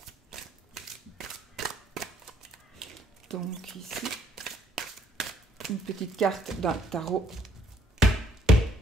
? Donc ici, une petite carte d'un tarot.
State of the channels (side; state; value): both; normal; correlation 0.65